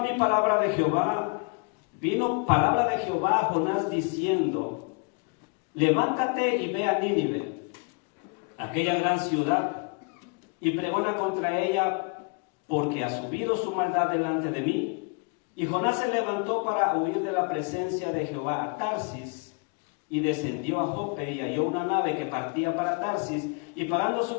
palabra de Jehová a Jonás diciendo: levántate y ve a Nínive, aquella gran ciudad, y pregona contra ella, porque ha subido su maldad delante de mí. Y Jonás se levantó para huir de la presencia de Jehová a Tarsis, y descendió a Jope y halló una nave que partía para Tarsis, y pagando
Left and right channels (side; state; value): right; quieter; 33.7 dB